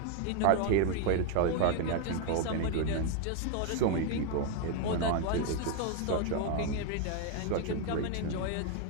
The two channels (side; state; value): both; different; correlation 0.01